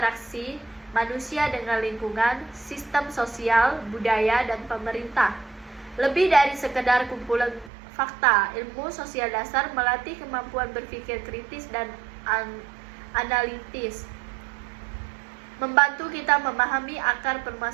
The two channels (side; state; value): left; drops out; at 7.7 s